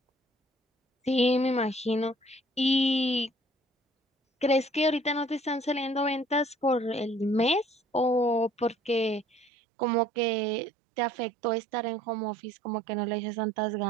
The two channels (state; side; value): drops out; left; at 9.5 s